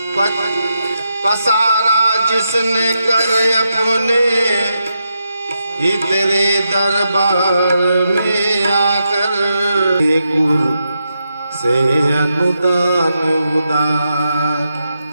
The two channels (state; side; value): inverted; both; correlation -0.85